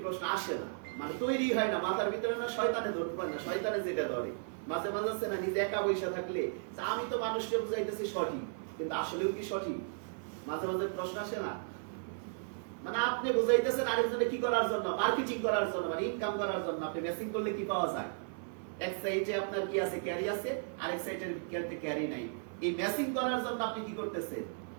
প্রশ্ন আসে না, মানে তৈরি হয় না মাথার ভিতরে, না শয়তানে ধরতে পারে না, শয়তানে যেটা ধরে মাঝে মাঝে আছে না, নিজে একা বসে থাকলে আমি তো মানুষকে বুঝাইতেছি সঠিক, কিন্তু আসলেও কি সঠিক, মাঝে মাঝে প্রশ্ন আসে না। মানে আপনি বুঝাইতেছেন আরেকজনে কি করার জন্য, মার্কেটিং করার জন্য, মানে ইনকাম করার জন্য। আপনি মেসিং করলে কি পাওয়া যায়? এক সাইডে আপনার কি আছে, ক্যারি আছে, আরেক সাইডের ক্যারি নাই। এই মেসিং করার জন্য আপনি কি করতেছেন?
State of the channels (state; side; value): silent; left; 54 dB below the other